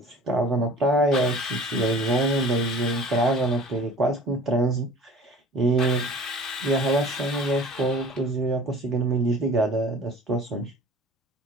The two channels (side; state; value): both; normal; correlation 0.45